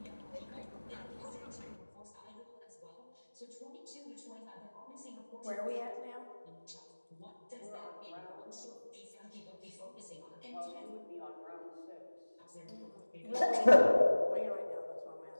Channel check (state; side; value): inverted; both; correlation -1.00